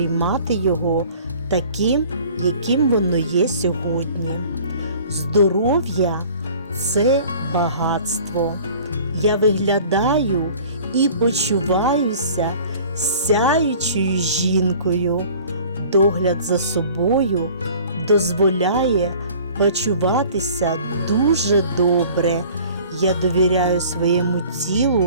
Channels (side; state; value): both; inverted; correlation -0.47